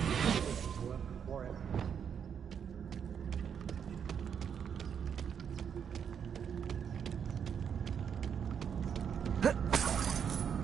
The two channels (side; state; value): left; quieter; 7.7 dB